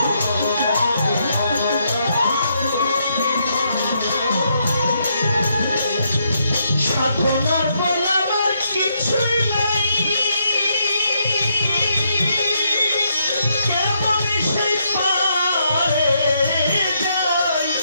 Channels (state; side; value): inverted; both; correlation -0.76